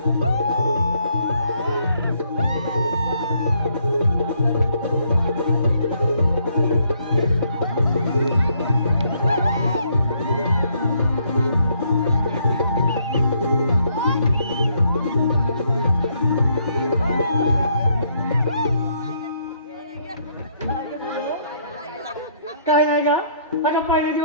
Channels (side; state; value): both; inverted; correlation -0.70